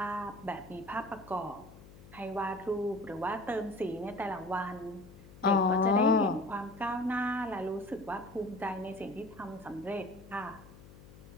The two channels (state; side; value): noise; left; hum, 19 dB below the sound